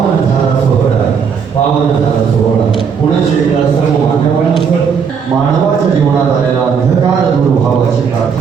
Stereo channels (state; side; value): quieter; left; 6.5 dB